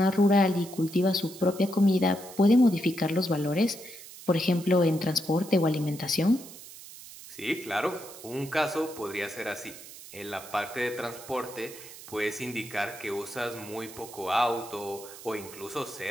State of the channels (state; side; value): noise; right; hiss, 16 dB below the sound